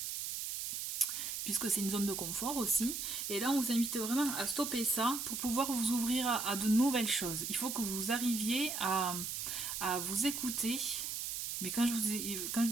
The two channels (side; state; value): right; noise; hiss, 4 dB below the sound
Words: puisque c'est une zone de confort aussi. Et là, on vous invite vraiment à stopper ça pour pouvoir vous ouvrir à de nouvelles choses. Il faut que vous arriviez à vous écouter. Mais quand je